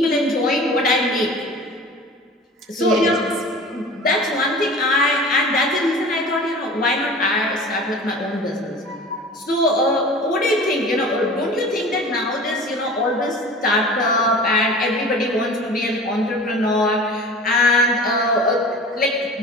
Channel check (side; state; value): both; normal; correlation 0.40